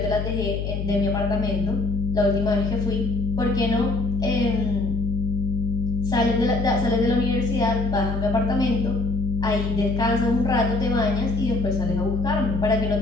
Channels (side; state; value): left; noise; hum, 3 dB below the sound